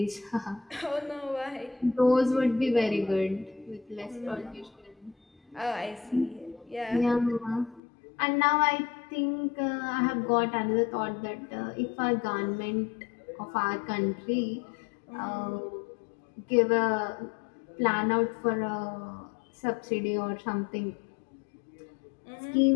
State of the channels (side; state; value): right; drops out; at 7.8 s